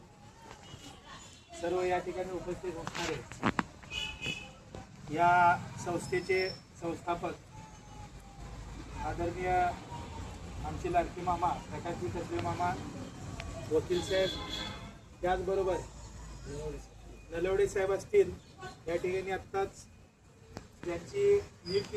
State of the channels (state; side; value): identical; both; correlation 1.00